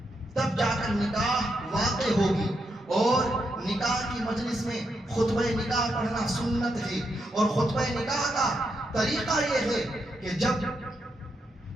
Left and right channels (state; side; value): normal; both; correlation 0.82